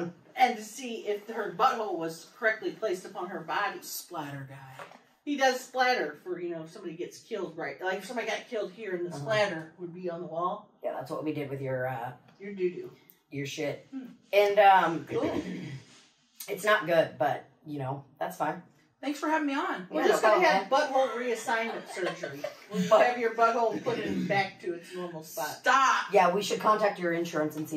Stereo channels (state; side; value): identical; both; correlation 1.00